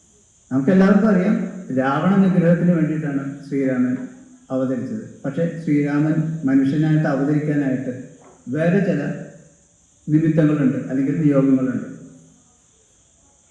നമുക്കെല്ലാവർക്കും അറിയാം, രാവണ നിഗ്രഹത്തിന് വേണ്ടിയിട്ടാണ് ശ്രീരാമൻ അവതരിച്ചത്. പക്ഷെ ശ്രീരാമൻ മനുഷ്യനായിട്ട് അവതരിക്കാനായിട്ട് വേറെ ചില നിമിത്തങ്ങളുണ്ട്, അല്ലെങ്കിൽ നിയോഗങ്ങളുണ്ട്.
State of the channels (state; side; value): identical; both; correlation 1.00